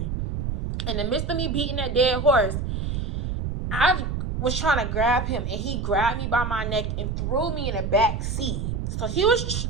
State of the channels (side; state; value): right; noise; rumble, 3 dB below the sound